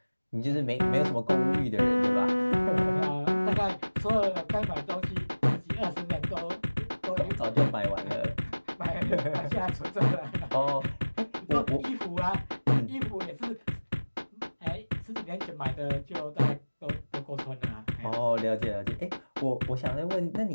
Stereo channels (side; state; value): both; inverted; correlation -1.00